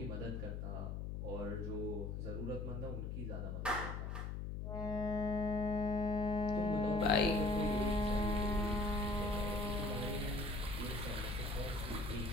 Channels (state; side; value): noise; left; hum, 4 dB below the sound